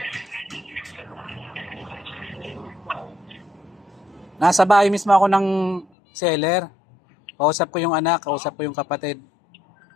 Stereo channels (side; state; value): right; drops out; at 5.9 s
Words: Nasa bahay mismo ako ng seller. Kausap ko yung anak, kausap ko yung kapatid.